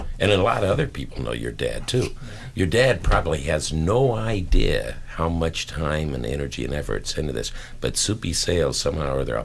and a lot of other people know your dad too. Your dad probably has no idea how much time and energy and effort's into this, but Soupy Sales somehow or other, I'll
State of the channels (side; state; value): both; identical; correlation 1.00